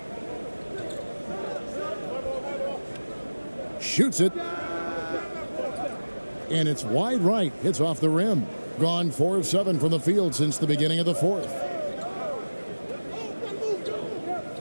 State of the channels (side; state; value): both; inverted; correlation -1.00